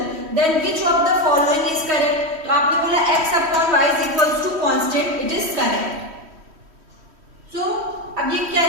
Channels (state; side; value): late; left; 3.1 ms